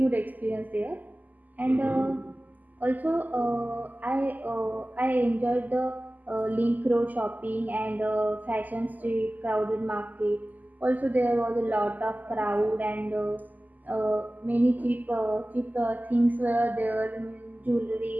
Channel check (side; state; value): left; late; 0.082 ms